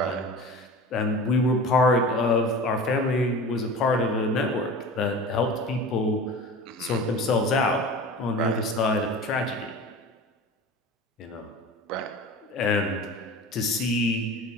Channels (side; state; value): both; normal; correlation 0.35